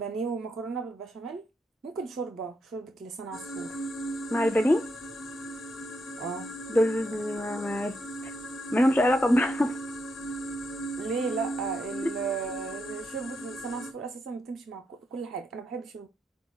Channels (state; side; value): normal; both; correlation 0.81